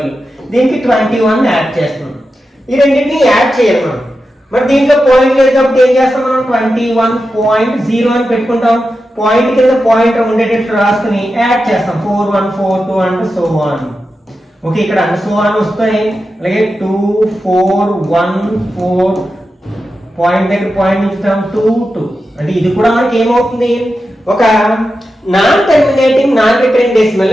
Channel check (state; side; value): normal; both; correlation 0.90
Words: దీనికి 21 యాడ్ చేస్తున్నాం. ఈ రెండింటిని యాడ్ చేయాలి మనం. మరి దీంట్లో పాయింట్ లేదు కాబట్టి ఏం చేస్తాం మనం 21.0 అని పెట్టుకుంటాం. పాయింట్ కింద పాయింట్ ఉండేటట్టు రాసుకుని యాడ్ చేస్తాం 4142 అండ్ సో ఆన్. ఓకే, ఇక్కడ అండ్ సో ఆన్ వస్తాయి. అలాగే 2414 పాయింట్ దగ్గర పాయింట్ ఇస్తాం 22. అంటే ఇది కూడా మనకి ఏమవుతుంది, ఒక non terminating non recurring decimal